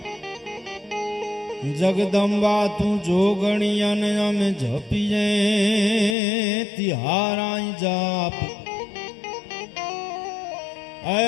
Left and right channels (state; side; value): drops out; right; at 6.2 s